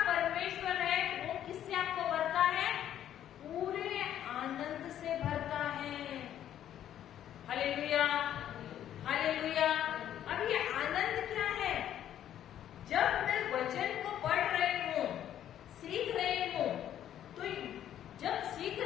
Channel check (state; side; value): quieter; right; 10.9 dB